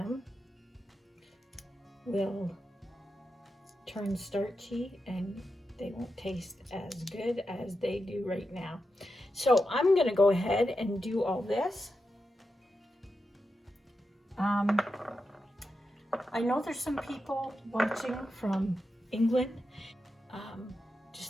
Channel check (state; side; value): normal; both; correlation 0.88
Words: will turn starchy and they won't taste as good as they do right now. So I'm gonna go ahead and do all this. I know there's some people watching from England.